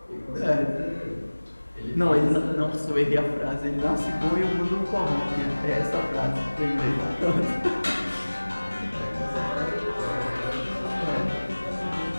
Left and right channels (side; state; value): both; inverted; correlation -1.00